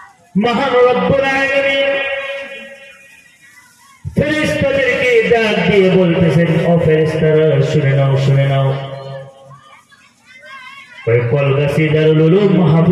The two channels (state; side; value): identical; both; correlation 1.00